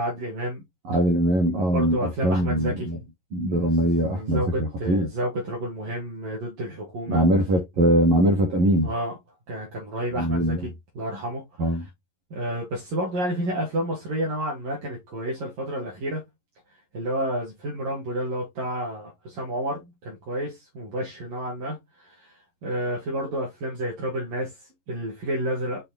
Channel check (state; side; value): late; left; 11 ms